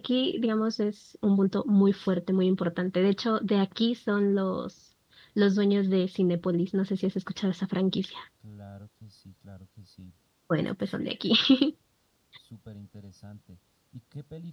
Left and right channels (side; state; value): both; identical; correlation 1.00